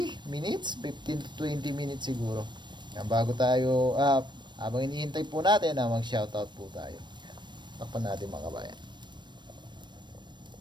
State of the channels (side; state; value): left; late; 0.22 ms